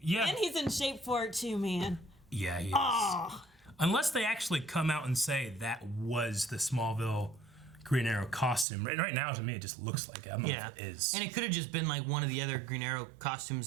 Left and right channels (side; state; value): left; drops out; at 8.7 s